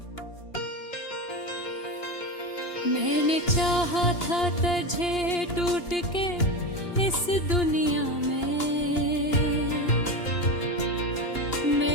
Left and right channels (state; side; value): late; right; 2.8 ms